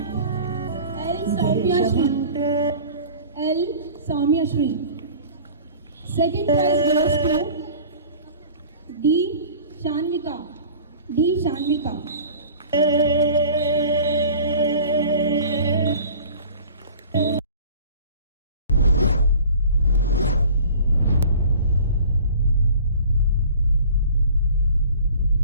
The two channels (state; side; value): inverted; both; correlation -0.44